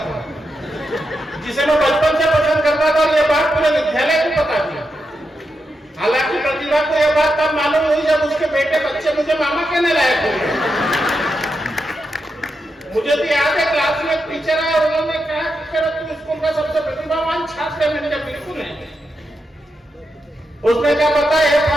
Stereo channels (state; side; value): normal; both; correlation 0.86